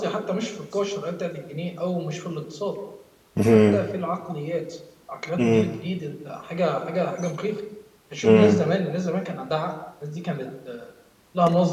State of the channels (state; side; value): identical; both; correlation 1.00